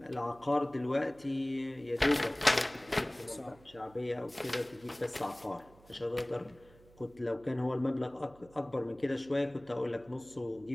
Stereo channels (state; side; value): noise; right; hum, 25 dB below the sound